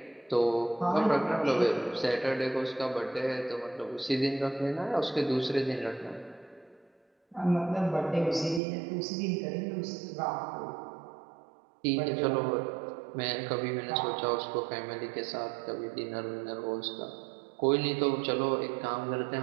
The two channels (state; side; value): drops out; left; at 8.6 s